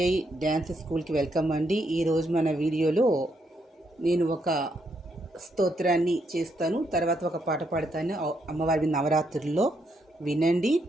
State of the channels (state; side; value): normal; both; correlation 0.77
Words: డ్యాన్స్ స్కూల్కి వెల్కమ్ అండి. ఈరోజు మన వీడియోలో నేను ఒక స్తోత్రాన్ని చేస్తాను, తర్వాత ఒక పాట పాడతాను. అమ్మవారి నవరాత్రుల్లో వినండి.